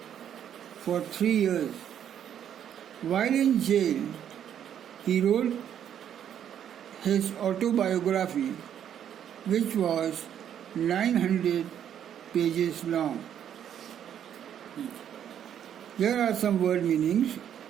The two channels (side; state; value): left; quieter; 9.6 dB